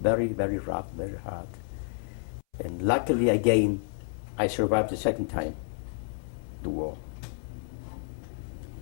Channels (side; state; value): right; silent; 58 dB below the other